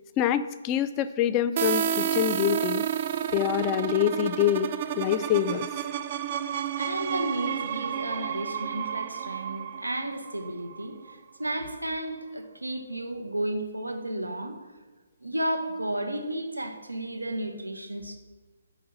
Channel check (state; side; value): inverted; both; correlation -0.36